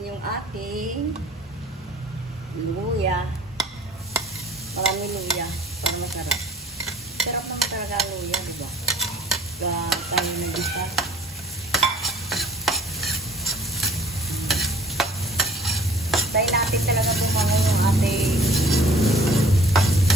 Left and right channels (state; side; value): normal; both; correlation 0.51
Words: yung ating luya. Marami luya para masarap. Sarap naman talaga ang luya, diba? Tayo nag-isa. Tayo natin talaga bumangon yung ating